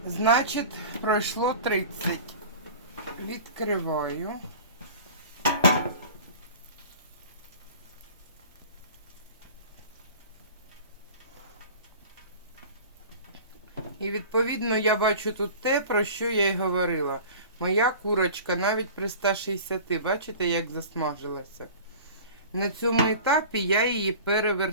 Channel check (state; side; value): inverted; both; correlation -0.40